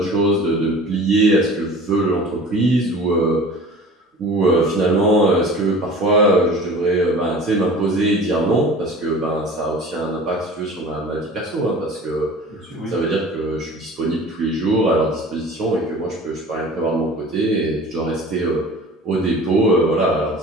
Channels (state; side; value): normal; both; correlation 0.41